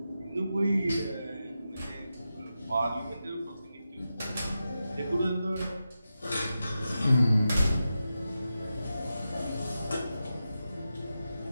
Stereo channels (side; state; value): both; inverted; correlation -0.90